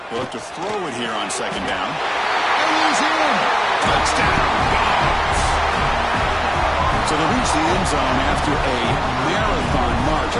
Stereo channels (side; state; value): both; identical; correlation 1.00